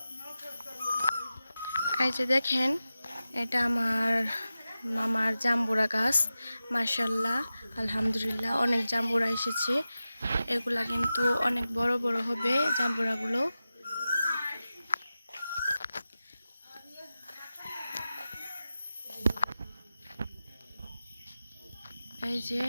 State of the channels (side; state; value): both; inverted; correlation -0.94